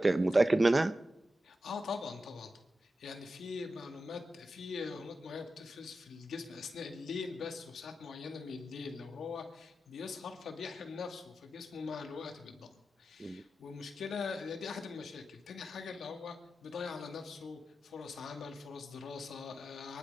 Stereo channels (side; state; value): both; normal; correlation 0.91